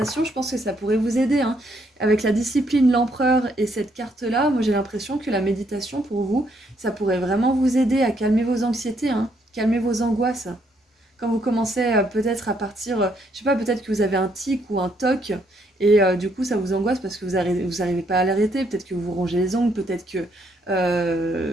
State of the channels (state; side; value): normal; both; correlation 0.72